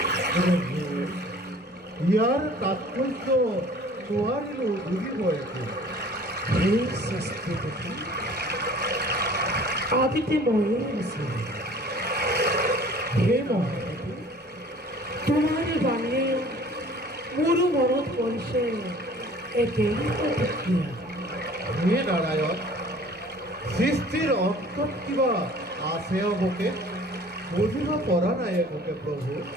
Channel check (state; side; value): normal; both; correlation 0.49